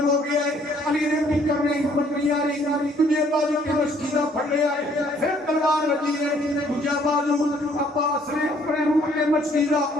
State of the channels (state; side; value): normal; both; correlation 0.62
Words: ہو گیا ہے علی نے بھی کرنے ہمت نہیں آ رہی تجھے بازو کے مشکیزہ پھڑ لیا ہے پھر تلوار لگی ہے مجھے بازو عباس نے اپنے منہ کے مشکیزہ